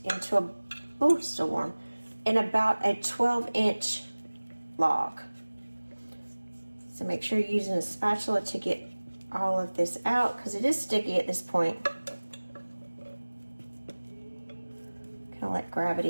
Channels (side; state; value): both; inverted; correlation -1.00